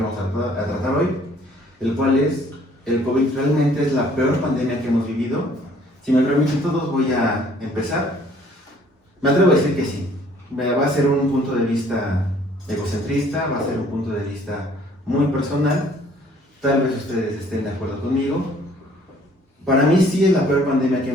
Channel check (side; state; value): both; normal; correlation 0.59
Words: vamos a tratar hoy, el cual es: ¿el COVID realmente es la peor pandemia que hemos vivido? Si me permiten todos, voy a empezar. Me atrevo a decir que sí. Va a ser un punto de vista egocentrista, va a ser un punto de vista muy personal. Tal vez ustedes estén de acuerdo conmigo. Para mí sí es la peor pandemia que